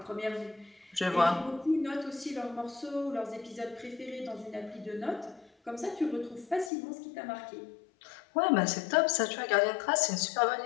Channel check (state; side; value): drops out; right; at 6.7 s